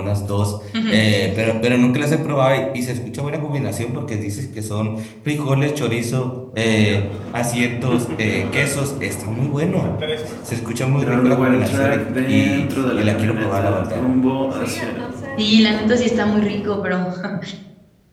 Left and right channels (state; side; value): identical; both; correlation 1.00